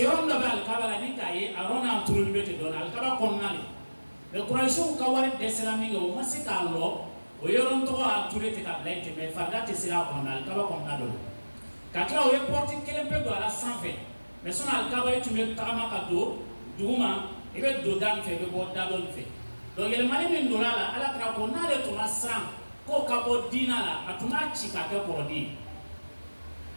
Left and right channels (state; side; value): inverted; both; correlation -1.00